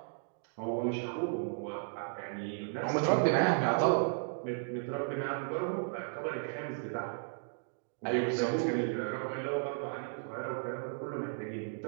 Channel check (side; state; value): left; silent; digital silence